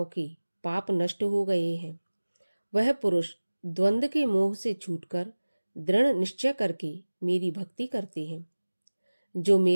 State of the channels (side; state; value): both; inverted; correlation -1.00